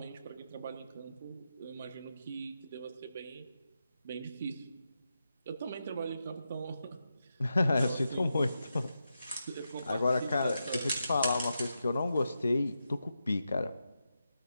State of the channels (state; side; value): inverted; both; correlation -0.88